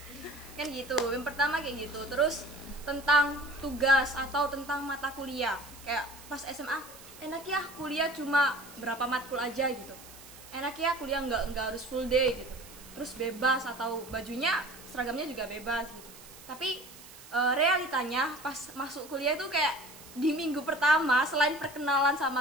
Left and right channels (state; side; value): noise; right; hiss, 18 dB below the sound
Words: Kan gitu, yang pertama kayak gitu. Terus tentang tugas atau tentang mata kuliah, kayak pas SMA enak ya kuliah cuma berapa matkul aja gitu, enak ya kuliah nggak harus full day gitu, terus bebas atau bajunya seragamnya juga bebas gitu. Tapi realitanya pas masuk kuliah itu kayak di minggu pertama selain perkenalan